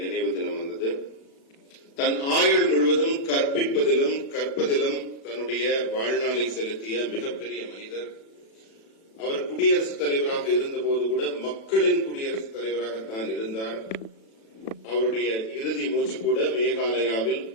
நினைவு தினம் வந்தது. தன் ஆயுள் முழுவதும் கற்பிப்பதிலும் கற்பதிலும் தன்னுடைய வாழ்நாளை செலுத்திய மிகப்பெரிய மனிதர். அவர் குடியரசுத் தலைவராக இருந்தபோது கூட மக்களின் குடியரசுத் தலைவராகத்தான் இருந்தார். அவருடைய இறுதி மூச்சு கூட மேகாலயாவில்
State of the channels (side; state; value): right; late; 36 ms